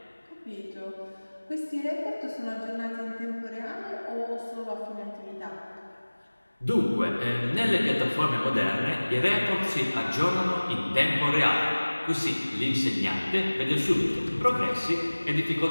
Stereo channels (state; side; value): inverted; both; correlation -1.00